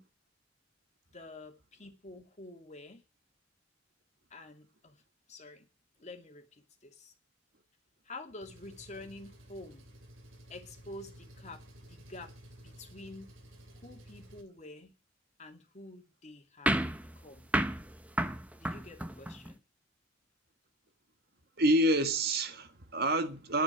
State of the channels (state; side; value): normal; both; correlation 0.38